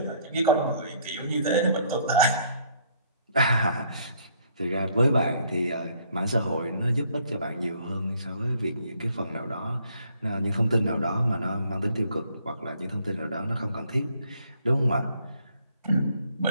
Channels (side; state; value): both; inverted; correlation -0.65